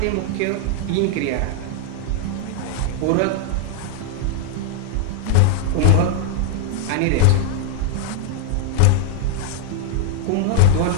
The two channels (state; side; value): different; both; correlation 0.00